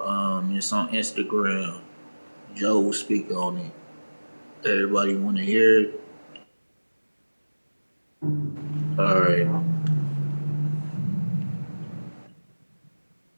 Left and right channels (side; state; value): both; inverted; correlation -1.00